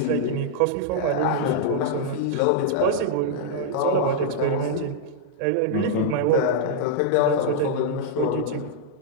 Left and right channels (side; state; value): both; different; correlation -0.02